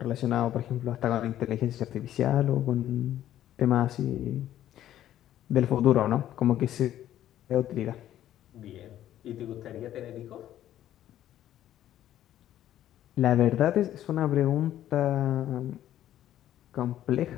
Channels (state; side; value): quieter; right; 12.2 dB